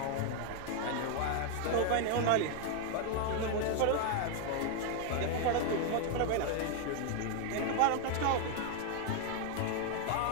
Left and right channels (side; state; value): both; different; correlation 0.00